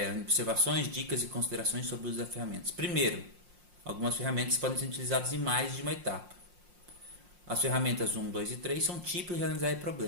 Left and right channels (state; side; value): late; left; 5.6 ms